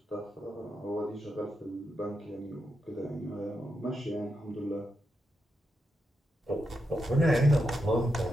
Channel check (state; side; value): normal; both; correlation 0.85